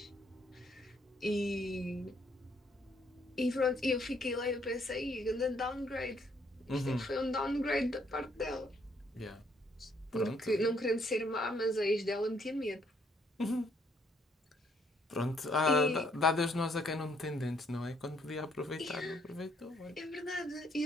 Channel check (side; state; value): both; normal; correlation 0.68